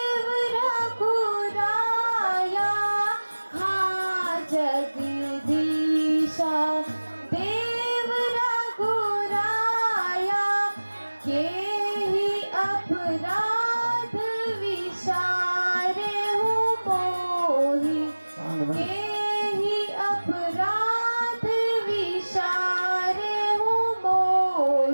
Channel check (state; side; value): inverted; both; correlation -1.00